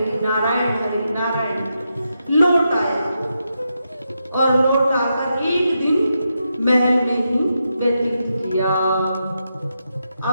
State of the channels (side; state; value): both; inverted; correlation -0.85